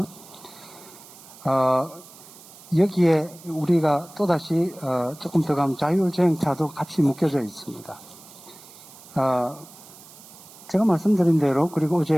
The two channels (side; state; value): right; noise; hiss, 20 dB below the sound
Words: 여기에 우리가 또다시 조금 더 가면 자율주행차도 같이 묶여져 있습니다. 제가 말씀드린 대로 그리고